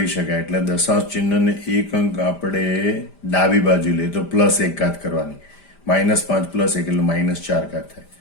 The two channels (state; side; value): late; right; 5.0 ms